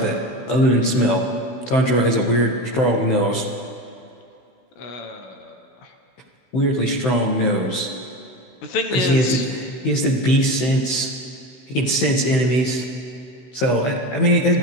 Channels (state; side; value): late; right; 15 ms